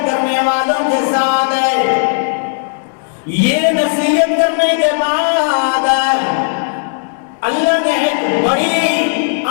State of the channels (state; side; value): silent; right; digital silence